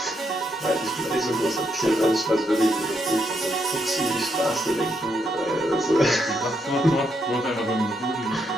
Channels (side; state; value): both; normal; correlation 0.78